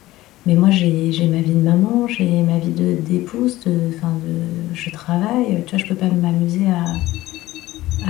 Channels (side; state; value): right; quieter; 16.9 dB